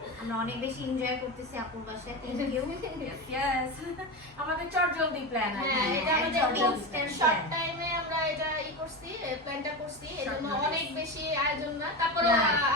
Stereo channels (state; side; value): normal; both; correlation 0.20